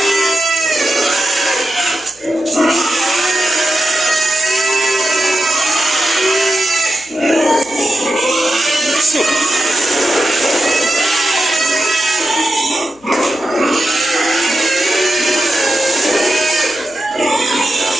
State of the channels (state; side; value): noise; left; hum, 30 dB below the sound